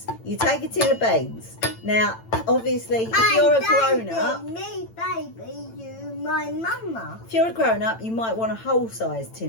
You take a tin of beans. Now, obviously, if you're a grown-up... Me, baby, you, my mama. If you're a grown-up, you might want a whole-sized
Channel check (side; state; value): right; late; 8.9 ms